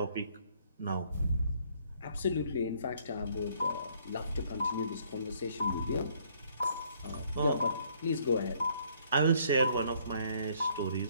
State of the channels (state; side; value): inverted; both; correlation -0.65